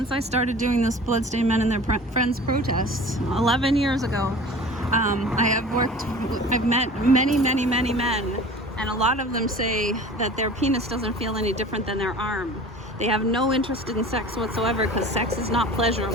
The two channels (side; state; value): both; normal; correlation 0.41